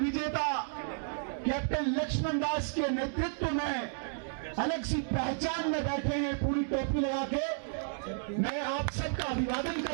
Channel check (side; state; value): left; silent; digital silence